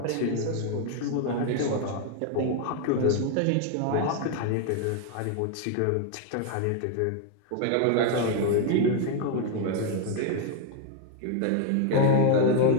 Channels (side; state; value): both; different; correlation 0.01